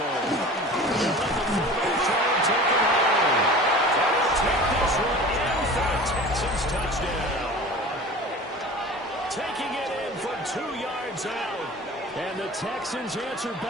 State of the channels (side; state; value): both; normal; correlation 0.39